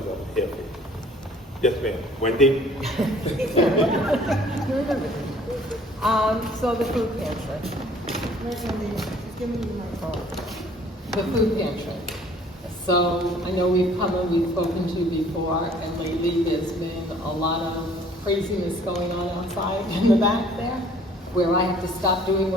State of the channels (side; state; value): both; normal; correlation 0.55